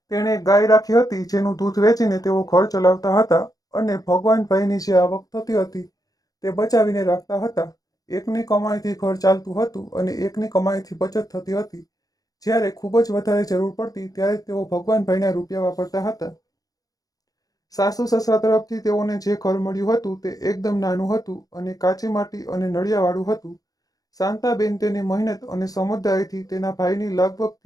તેણે ગાય રાખી હતી જેનું દૂધ વેચીને તેઓ ઘર ચલાવતા હતા અને ભગવાનભાઈની જે આવક થતી હતી તે બચાવીને રાખતા હતા। એકની કમાણીથી ઘર ચાલતું હતું અને એકની કમાણીથી બચત થતી હતી। જ્યારે ખૂબ જ વધારે જરૂર પડતી ત્યારે તેઓ ભગવાનભાઈના રૂપિયા વાપરતા હતા। સાસુ સસરા તરફથી તેઓને જે ઘર મળ્યું હતું તે એકદમ નાનું હતું અને કાચી માટી અને નળિયાવાળું હતું। શાંતાબેન તેની મહેનત અને સમજદારીથી તેના ભાઈની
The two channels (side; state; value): right; late; 0.18 ms